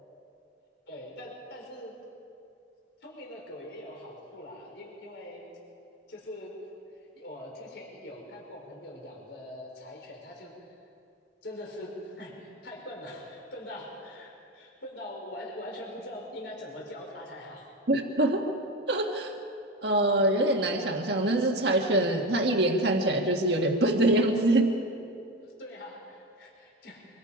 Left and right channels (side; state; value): both; normal; correlation 0.22